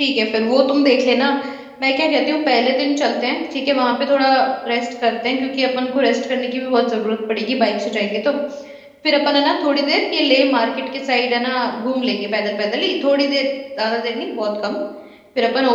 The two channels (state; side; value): identical; both; correlation 1.00